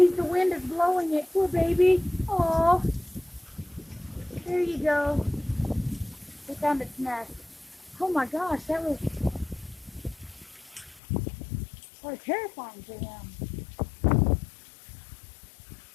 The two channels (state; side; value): drops out; right; at 11.0 s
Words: the wind is blowing it. Poor baby. Oh. There you go. It found its nest. Oh my gosh, that was so terrifying to him.